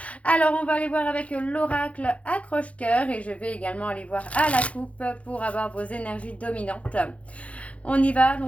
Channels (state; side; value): late; right; 0.064 ms